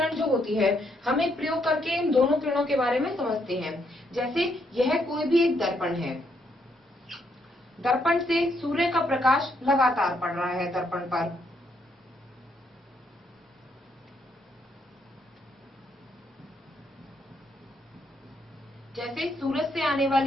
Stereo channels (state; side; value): normal; both; correlation 0.75